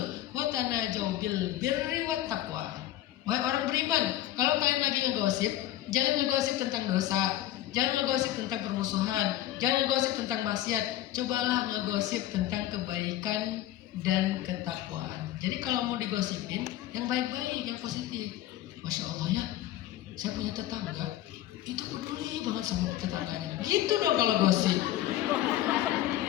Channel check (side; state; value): right; quieter; 13.7 dB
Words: wa tanajau bil birri wat taqwa. Wahai orang beriman, kalau kalian lagi ngegosip, jangan ngegosip tentang dosa, jangan ngegosip tentang permusuhan, jangan ngegosip tentang maksiat. Cobalah ngegosip tentang kebaikan dan ketakwaan. Jadi kalau mau digosipin, yang baik-baik, yang positif. Masya Allah ya, saya punya tetangga, itu peduli banget sama tetangganya. Gitu dong kalau gosip.